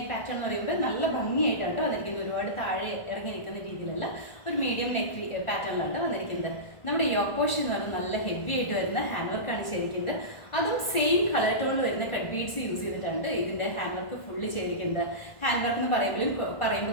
പാറ്റേൺ എന്ന് പറയുമ്പോൾ നല്ല ഭംഗിയായിട്ടാണ് വന്നിരിക്കുന്നത്. ഒരുപാട് താഴെ ഇറങ്ങി നിൽക്കുന്ന രീതിയിലല്ല, ഒരു മീഡിയം നെക്ക് പാറ്റേണിലാണ് വന്നിരിക്കുന്നത്. നമ്മുടെ യോക്ക് പോർഷൻ എന്ന് പറഞ്ഞാൽ നല്ല ഹെവി ആയിട്ട് വരുന്ന ഹാൻഡ് വർക്കാണ് ചെയ്തിരിക്കുന്നത്. അതും സെയിം കളർ ടോണിൽ വരുന്ന കട്ട് ബീഡ്സ് യൂസ് ചെയ്തിട്ടാണ് ഇതിന്റെ ഹാൻഡ് വർക്ക് ഫുള്ള് ചെയ്തിരിക്കുന്നത്. ഹാൻഡ് വർക്ക് എന്ന്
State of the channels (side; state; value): right; late; 1.5 ms